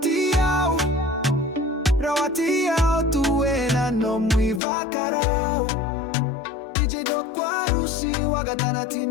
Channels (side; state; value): right; drops out; at 4.6 s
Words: Rawatiao tuena no mui vakarao. DJ do Warusi wagatana